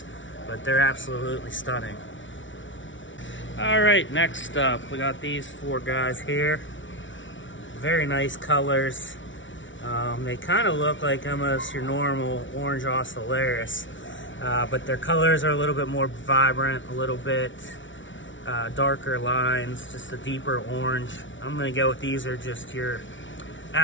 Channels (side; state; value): right; late; 0.56 ms